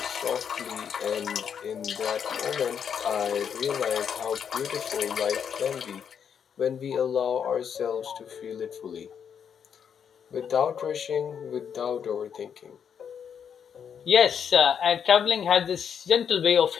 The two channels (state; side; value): quieter; right; 7.7 dB